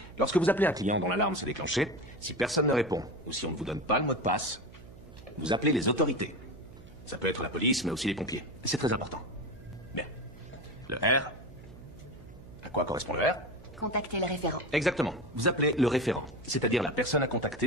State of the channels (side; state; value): right; noise; hum, 19 dB below the sound